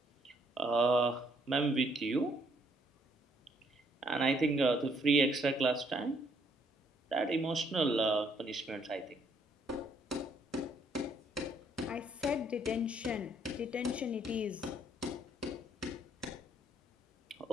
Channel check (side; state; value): both; normal; correlation 0.68